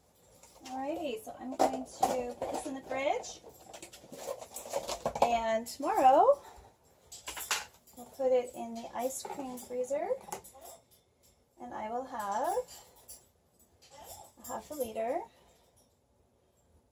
Alrighty, so I'm going to put this in the fridge, and tomorrow we'll put it in the ice cream freezer, and I will have a half a liter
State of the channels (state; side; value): identical; both; correlation 1.00